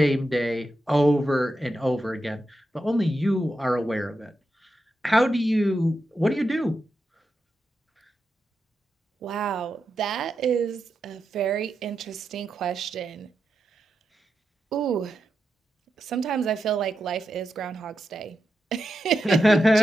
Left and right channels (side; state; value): both; normal; correlation 0.88